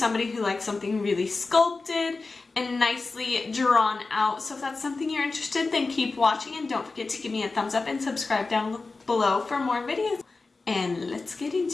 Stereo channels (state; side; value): quieter; right; 3.8 dB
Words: who likes something really sculpted and nicely drawn out. So if that's something you're interested in, then keep watching and don't forget to give me a thumbs up and subscribe down below for more videos. And let's get